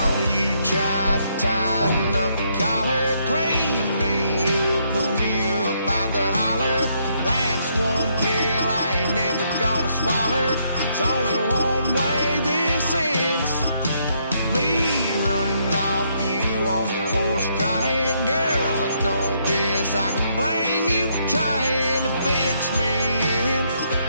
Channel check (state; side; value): inverted; both; correlation -0.73